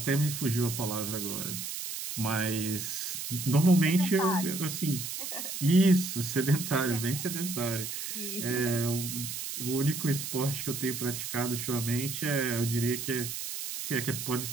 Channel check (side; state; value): right; noise; hiss, 6 dB below the sound